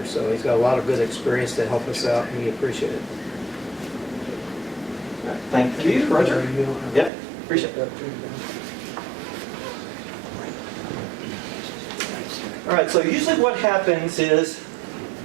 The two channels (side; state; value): left; drops out; at 7.1 s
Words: So he's got a lot of good experience to help us out, and we appreciate it. Thank you, Roger. Yep, appreciate it. All right, so usually what happens is